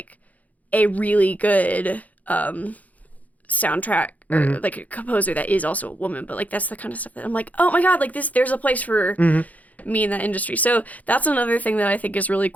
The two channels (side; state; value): right; late; 0.075 ms